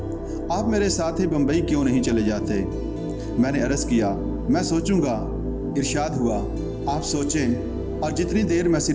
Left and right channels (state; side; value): identical; both; correlation 1.00